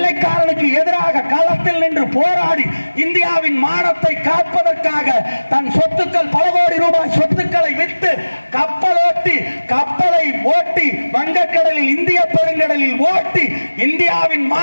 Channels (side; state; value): both; inverted; correlation -1.00